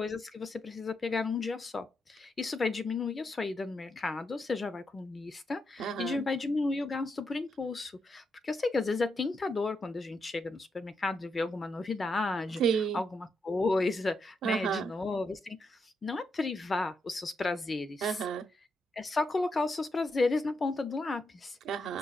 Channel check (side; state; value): both; normal; correlation 0.82